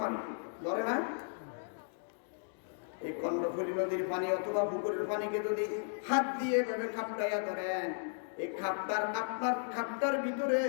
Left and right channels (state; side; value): silent; right; digital silence